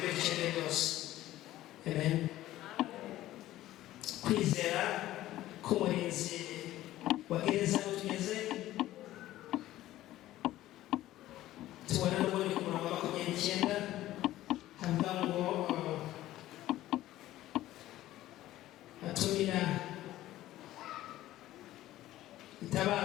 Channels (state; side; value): quieter; right; 14.9 dB